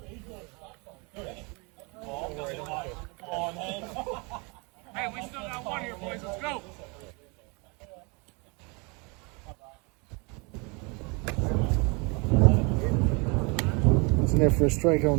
Hey, we still got one here, boys. Let's go. It's in there for a strike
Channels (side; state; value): left; quieter; 30.8 dB